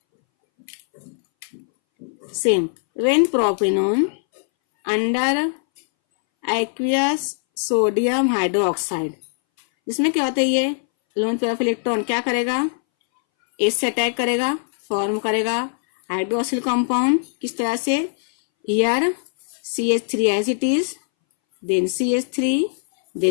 Same when propanone under aqueous sodium hydroxide, जिसमें क्या होता है ये लोन पेयर ऑफ इलेक्ट्रॉन क्या करेगा, एस से अटैक करेगा, फॉर्म करेगा हाइड्रोक्सिल कंपाउंड। किस तरह से, here CH3 as it is, then CH3,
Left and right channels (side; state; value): right; silent; 62 dB below the other